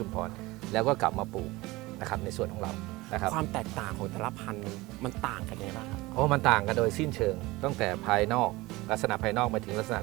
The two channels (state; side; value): quieter; left; 20.8 dB